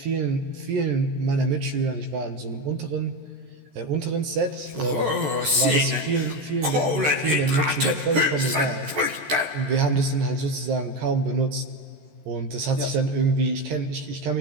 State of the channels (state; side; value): late; left; 14 ms